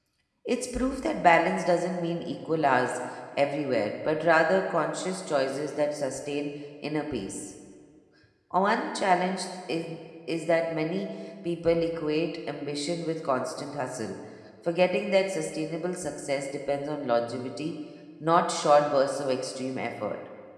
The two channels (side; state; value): both; identical; correlation 1.00